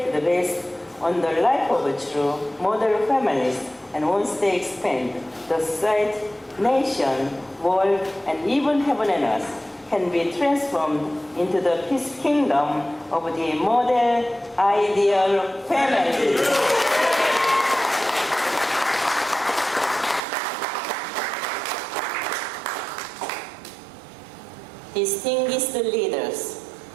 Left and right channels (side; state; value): left; drops out; at 20.2 s